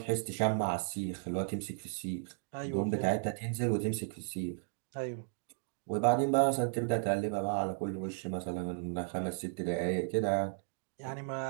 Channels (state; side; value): silent; left; digital silence